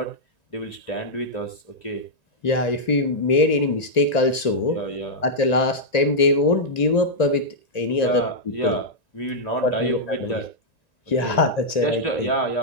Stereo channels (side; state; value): right; late; 1.9 ms